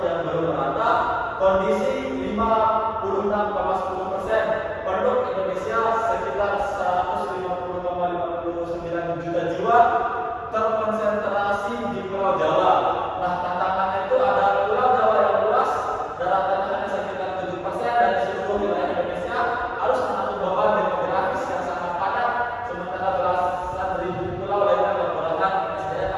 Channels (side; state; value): both; identical; correlation 1.00